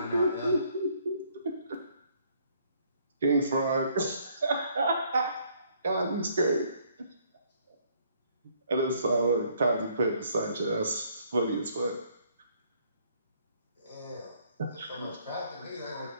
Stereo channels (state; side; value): inverted; both; correlation -0.65